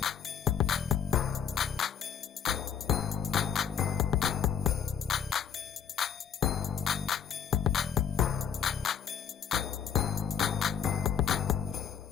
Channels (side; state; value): right; quieter; 7.9 dB